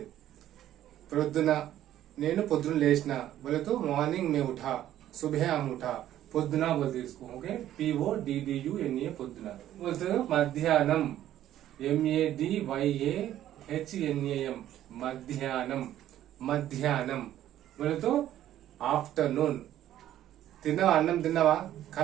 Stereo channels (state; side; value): quieter; left; 12.4 dB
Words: ప్రొద్దున నేను పొద్దున లేచిన बोले तो मॉर्निंग में उठा, सुबह हम उठा। పొద్దున बोलते इसको। ओके, PODDUNA, పొద్దున। बोलते మధ్యాహ్నం, MADYAHNAM, మధ్యాహ్నం, మధ్యాహ్నం बोले तो आफ्टरनून। తిన్నావా? అన్నం తిన్నావా?